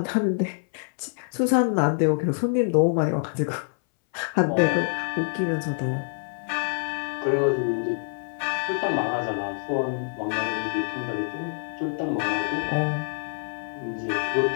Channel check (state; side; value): silent; right; 60 dB below the other